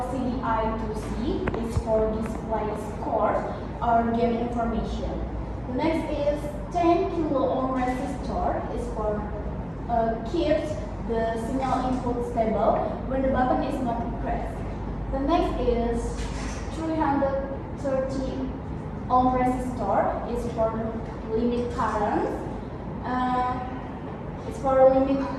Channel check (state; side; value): identical; both; correlation 1.00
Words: I2C. It's for display score or game information. The next is 10 kilo ohm resistor. Is for keeps the signal input stable when the button is not pressed. The next is 330 ohm resistor. Is for limit current. It's for